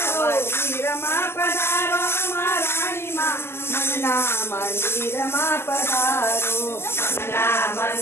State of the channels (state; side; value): late; right; 0.12 ms